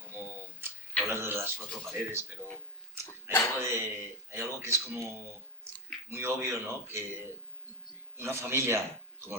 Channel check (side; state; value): both; normal; correlation 0.11